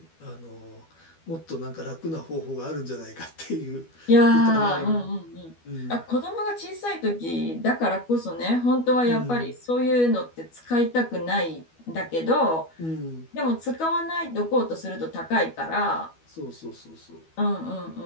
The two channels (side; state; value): right; late; 12 ms